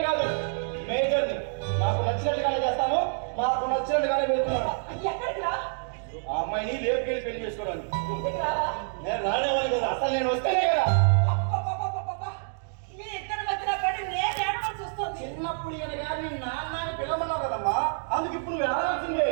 కాదు, మేజర్ని. నాకు నచ్చినట్టుగానే చేస్తాను, నాకు నచ్చినట్టుగానే వెళ్తున్నాను. ఆ అమ్మాయిని లేపుకెళ్ళి పెళ్లి చేసుకోవడానికి. నేను రానేవాళ్ళు కదా, అసలు నేను వస్తేనే కదా. చిన్నప్పుడు ఈయన గారిని నాన్న పిలవన్నావు కదమ్మా, అందుకు ఇప్పుడు నువ్వు ఎడగాల్సిందే.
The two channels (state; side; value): silent; left; digital silence